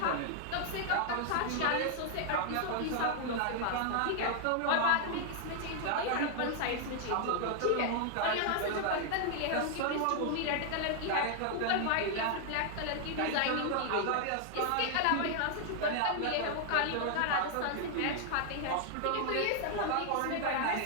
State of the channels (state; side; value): different; both; correlation 0.00